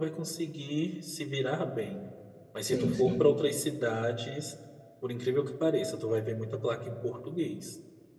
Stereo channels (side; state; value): both; identical; correlation 1.00